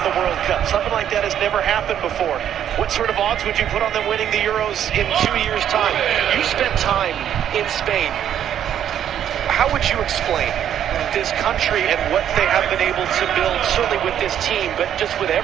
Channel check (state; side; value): quieter; left; 10.0 dB